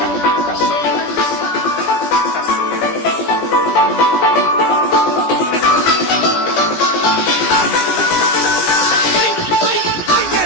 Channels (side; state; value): right; late; 17 ms